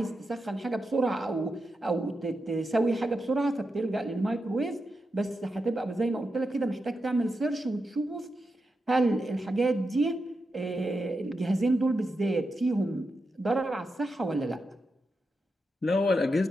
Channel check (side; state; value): both; normal; correlation 0.88